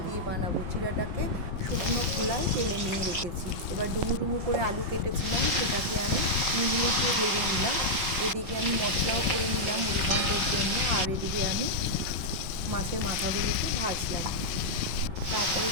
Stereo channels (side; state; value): left; late; 5.7 ms